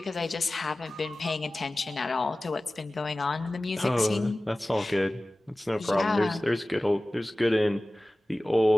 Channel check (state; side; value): normal; both; correlation 0.97